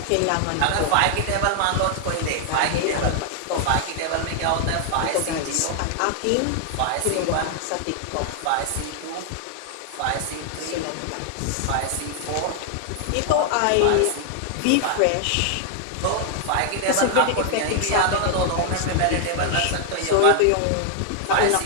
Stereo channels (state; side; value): different; both; correlation 0.00